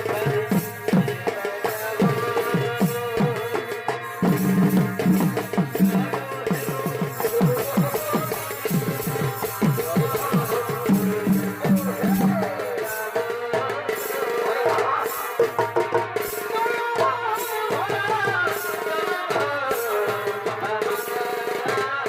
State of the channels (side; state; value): both; identical; correlation 1.00